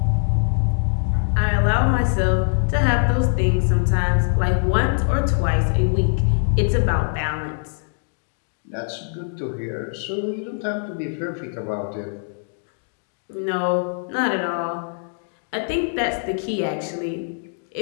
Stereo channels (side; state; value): right; silent; digital silence